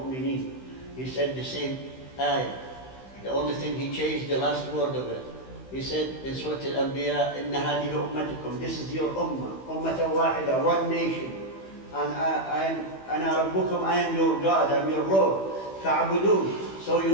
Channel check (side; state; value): right; late; 15 ms